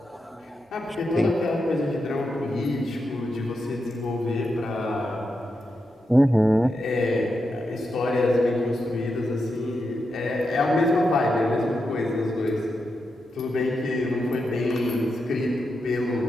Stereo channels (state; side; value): normal; both; correlation 0.86